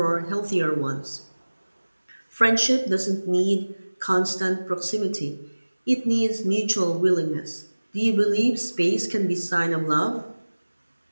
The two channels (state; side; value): inverted; both; correlation -1.00